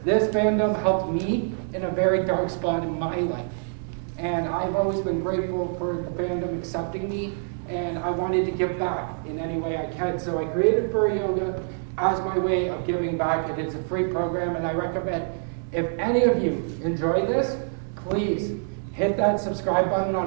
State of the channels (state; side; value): silent; left; digital silence